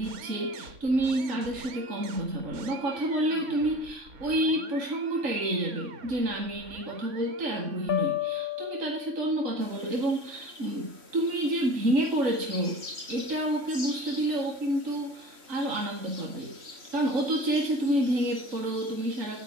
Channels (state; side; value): late; left; 3.6 ms